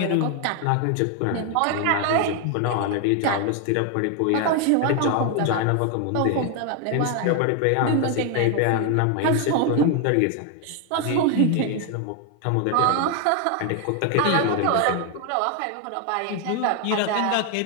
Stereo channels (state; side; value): different; both; correlation 0.01